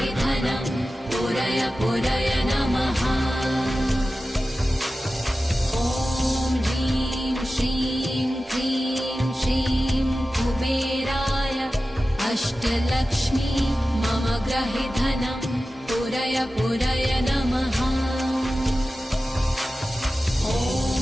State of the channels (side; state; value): both; normal; correlation 0.94